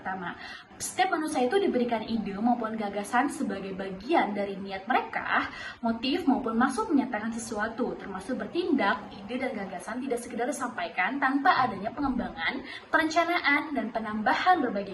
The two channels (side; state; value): both; identical; correlation 1.00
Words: Setiap manusia itu diberikan ide maupun gagasan sebagai bagian dari niat mereka, motif maupun maksud menyatakan sesuatu, termasuk bertindak. Ide dan gagasan tidak sekedar disampaikan tanpa adanya pengembangan, perencanaan, dan penambahan